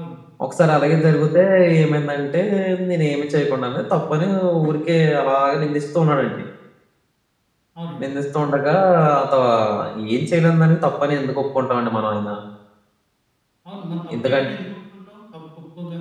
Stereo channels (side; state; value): both; identical; correlation 1.00